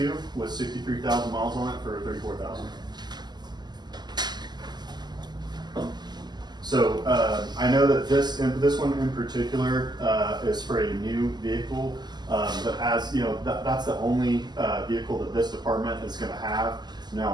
with 63,000 miles on it for 34,000. So I know that this one in particular is for a new vehicle, but as that's the only vehicle that this department is going to have.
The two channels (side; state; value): left; late; 0.21 ms